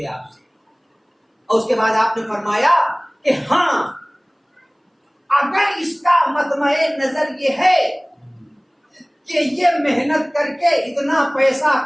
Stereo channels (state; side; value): identical; both; correlation 1.00